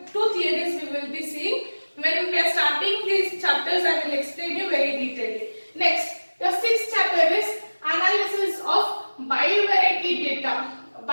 2 theories we will be seeing. When we are starting these chapters, I will explain you very detailedly. Next, the 6th chapter is analysis of bivariate data.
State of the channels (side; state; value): both; inverted; correlation -1.00